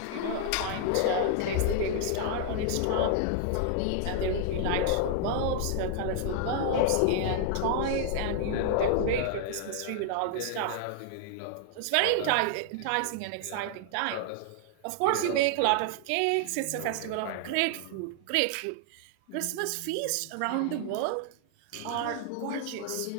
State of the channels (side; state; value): both; different; correlation 0.00